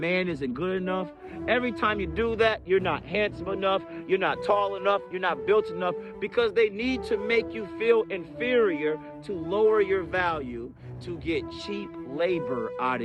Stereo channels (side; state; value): both; identical; correlation 1.00